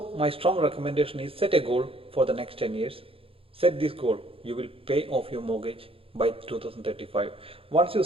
my strong recommendation is set a goal for the next 10 years. Set this goal. You will pay off your mortgage by 2035. Once you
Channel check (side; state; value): left; late; 0.27 ms